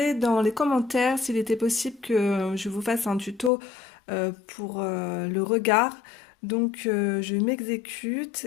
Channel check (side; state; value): right; drops out; at 3.5 s